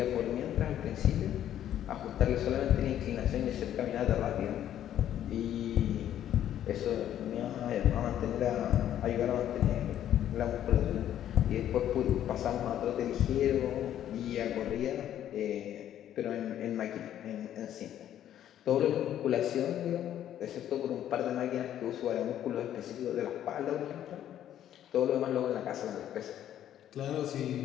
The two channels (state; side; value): quieter; right; 11.1 dB